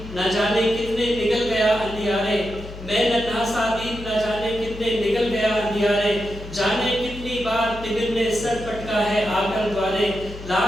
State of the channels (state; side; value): noise; left; hum, 13 dB below the sound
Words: न जाने कितने निकल गया अंधियारे, मैं नन्हा सा दीप न जाने कितने निकल गया अंधियारे, जाने कितनी बार तिमिर ने सर पटका है आकर द्वारे,